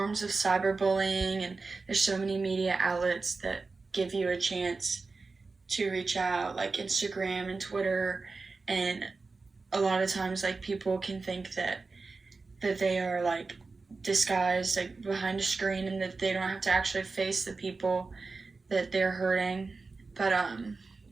of cyberbullying, and there's so many media outlets that give you a chance to reach out, like Instagram and Twitter. And a lot of times, like, people can think that they are like disguised, like behind a screen, and that they don't have to actually face the people that they're hurting. But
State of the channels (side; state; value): left; quieter; 4.0 dB